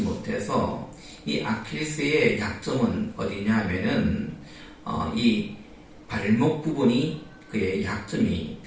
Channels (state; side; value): identical; both; correlation 1.00